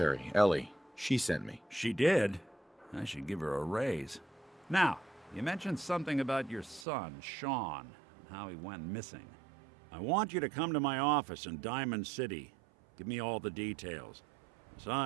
Ellie. She sent me. She did? I should give her a raise. Now, you mentioned something about your son, Sean, and how he went missing. I want you to come to my office in Diamond City. Give me all the details.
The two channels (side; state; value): left; drops out; at 6.9 s